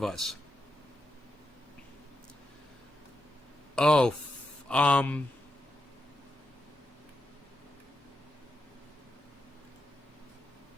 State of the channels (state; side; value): normal; both; correlation 0.85